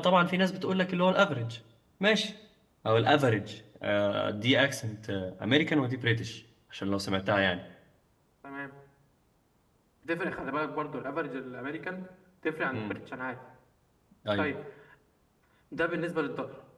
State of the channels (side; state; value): both; identical; correlation 1.00